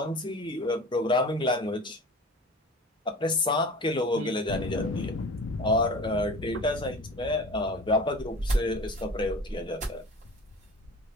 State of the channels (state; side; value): normal; both; correlation 0.38